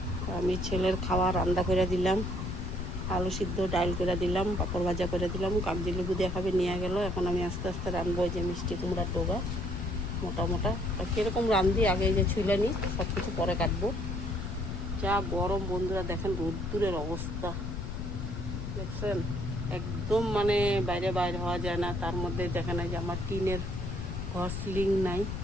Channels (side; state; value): left; noise; rumble, 4 dB below the sound